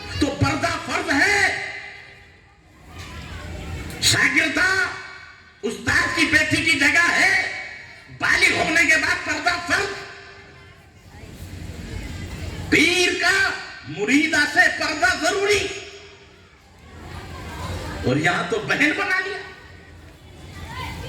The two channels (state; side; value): identical; both; correlation 1.00